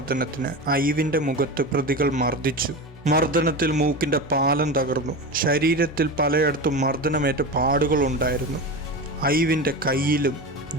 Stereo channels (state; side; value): normal; both; correlation 0.25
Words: ഐവിൻ്റെ മുഖത്ത് പ്രതികൾ മർദ്ദിച്ചു. മർദ്ദനത്തിൽ മൂക്കിൻ്റെ പാലം തകർന്നു. ശരീരത്തിൽ പലയിടത്തും മർദ്ദനമേറ്റ പാടുകളുണ്ടായിരുന്നു. ഐവിൻ്റെ കയ്യിലും